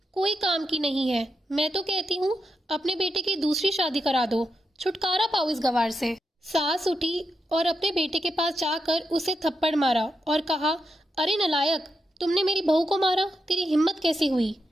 कोई काम की नहीं है। मैं तो कहती हूँ अपने बेटे की दूसरी शादी करा दो, छुटकारा पाओ इस गवार से। सास उठी और अपने बेटे के पास जाकर उसे थप्पड़ मारा और कहा, अरे नलायक, तुमने मेरी बहू को मारा, तेरी हिम्मत कैसी हुई?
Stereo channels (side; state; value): both; normal; correlation 0.85